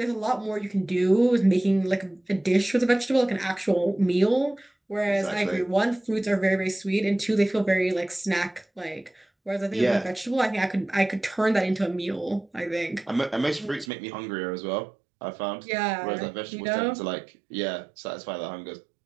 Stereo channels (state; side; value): drops out; left; at 13.9 s